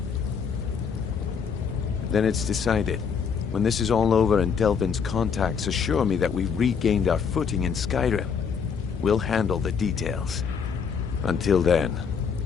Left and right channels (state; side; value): quieter; right; 6.4 dB